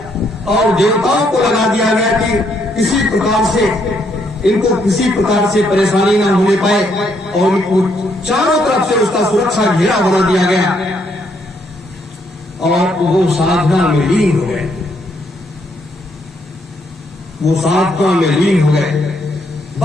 और देवताओं को लगा दिया गया कि किसी प्रकार से इनको किसी प्रकार से परेशानी न होने पाए और इनको चारों तरफ से उसका सुरक्षा घेरा बना दिया गया और वो साधना में लीन हो गए। वो साधना में लीन हो गए।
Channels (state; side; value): normal; both; correlation 0.73